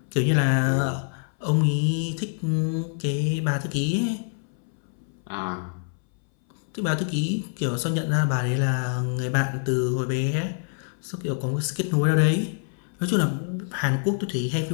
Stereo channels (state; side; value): silent; right; 61 dB below the other